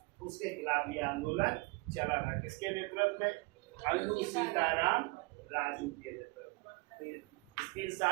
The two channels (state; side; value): quieter; left; 25.7 dB